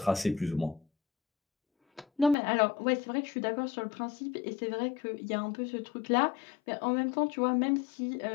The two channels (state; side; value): drops out; right; at 2.4 s